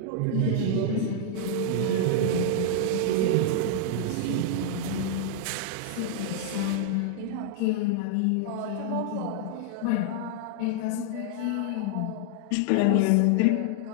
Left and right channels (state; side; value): different; both; correlation -0.01